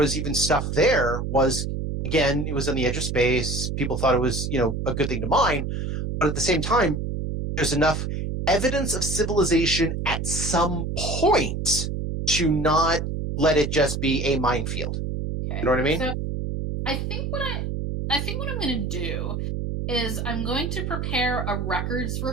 even stuff there was, again, it was on the edge of space. People thought it was, a good thing to mine. But at the same time, there's enough evidence of civilization at some point to not let it just be a minefield. Okay. You know what I mean? So I think what I'm going to do is I'm going to prepare a records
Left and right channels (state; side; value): noise; right; hum, 3 dB below the sound